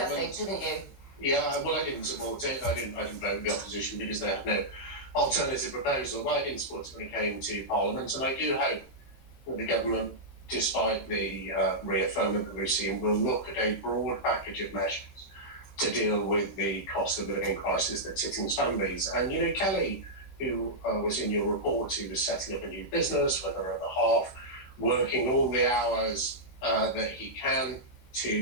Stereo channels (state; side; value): late; right; 16 ms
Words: think, didn't you? Yeah, well, I didn't support it. I didn't vote with the opposition because they had no alternative proposal. But I didn't support it when it came to Parliament, and I do hope that the government, despite the reaffirmment that we've seen, will look at a broad package of measures to deal with the cost of living crisis that's hitting families. And, you know, Kelly, who was in your report, who was setting up a new business, whether at the half, working all the hours that he can